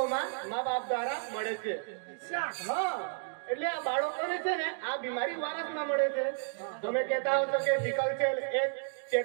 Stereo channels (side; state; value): left; silent; digital silence